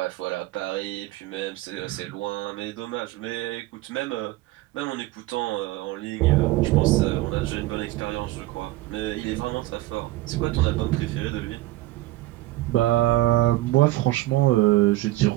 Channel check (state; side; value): quieter; left; 17.5 dB